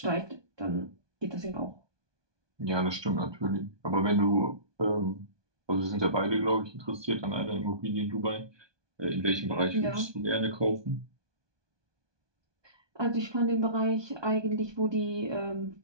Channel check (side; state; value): left; late; 1.2 ms